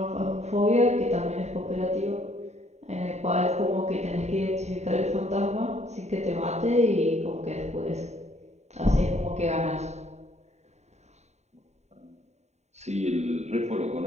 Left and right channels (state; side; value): late; left; 0.32 ms